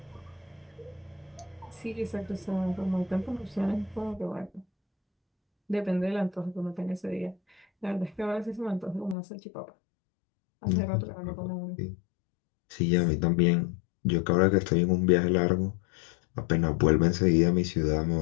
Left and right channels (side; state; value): right; drops out; at 9.2 s